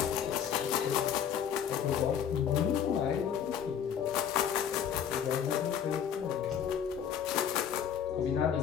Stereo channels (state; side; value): quieter; right; 8.6 dB